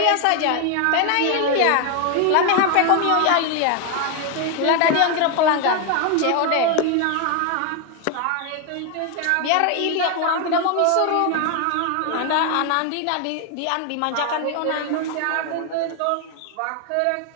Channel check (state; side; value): different; both; correlation 0.01